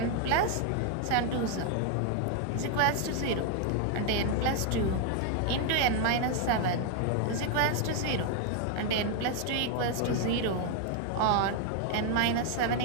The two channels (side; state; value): both; different; correlation 0.00